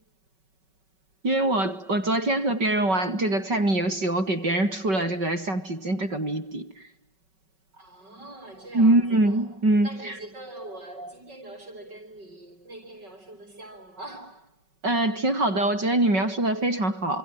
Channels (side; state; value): left; late; 5.3 ms